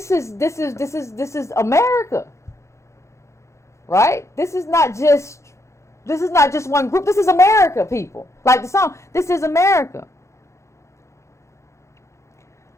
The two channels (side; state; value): right; late; 0.14 ms